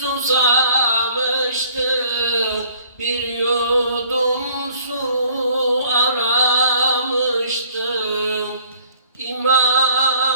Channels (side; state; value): both; inverted; correlation -0.58